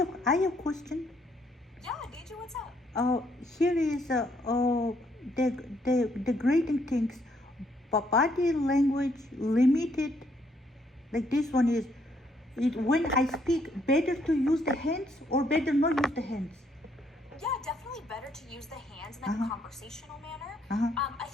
have a question. Yeah, DJ, what's up? Here is the grading things, body language limited. Like this one is, when I speak, better to use the hands or better not use the hands? Yeah, definitely better to use the hands in like a conversational manner. I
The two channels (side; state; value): both; normal; correlation 0.70